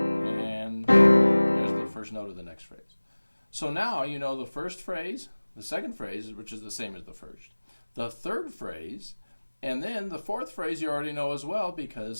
there's the first note of the next phrase. So now you know the first phrase, the second phrase, which is the same as the first, the third phrase, and then the fourth phrase you already know as well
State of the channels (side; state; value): both; inverted; correlation -1.00